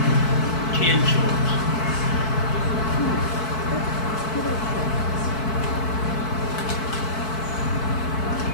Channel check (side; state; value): right; late; 4.6 ms